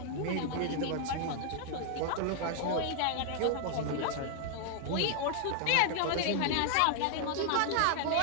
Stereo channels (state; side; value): different; both; correlation 0.00